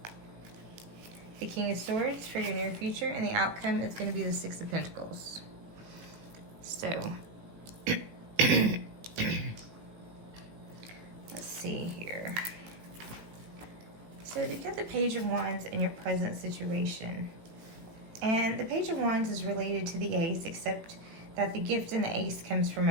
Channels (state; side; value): late; left; 18 ms